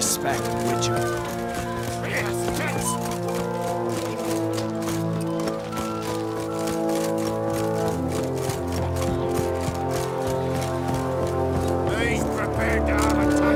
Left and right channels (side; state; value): both; identical; correlation 1.00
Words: Witcher. He's prepared to have a